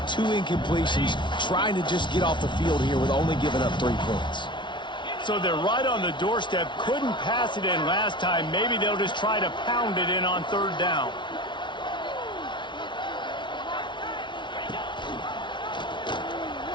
2 incompletions, trying to just get off the field here with only giving up 3 points. So they're right on the doorstep. Couldn't pass it in last time. Maybe they'll just try to pound it in on 3rd down.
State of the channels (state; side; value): late; right; 0.23 ms